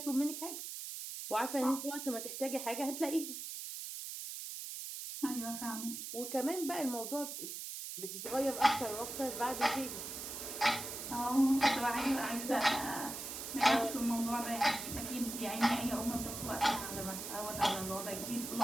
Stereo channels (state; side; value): noise; right; hiss, 7 dB below the sound